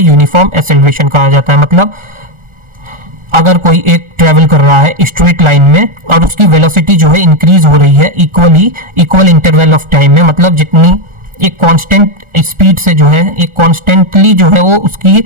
यूनिफॉर्म एक्सेलरेशन कहा जाता है। मतलब अगर कोई एक ट्रेवल कर रहा है स्ट्रेट लाइन में और उसकी वेलोसिटी जो है इंक्रीज हो रही है इक्वल इंटरवल ऑफ टाइम में, मतलब जितनी एक कांस्टेंट स्पीड से जो है, एक कांस्टेंटली जो है वो उसकी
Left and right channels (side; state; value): left; late; 1.4 ms